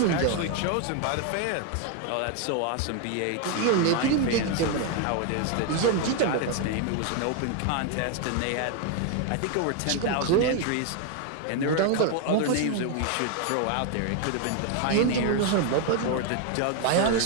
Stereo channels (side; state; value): both; different; correlation 0.01